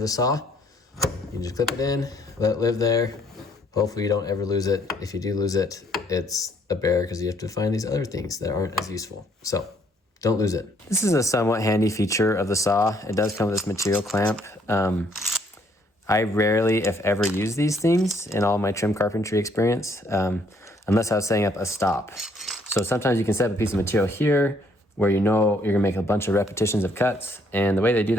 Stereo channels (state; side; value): normal; both; correlation 0.67